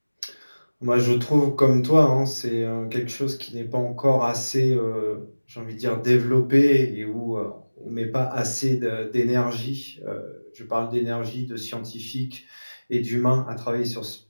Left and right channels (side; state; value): both; inverted; correlation -1.00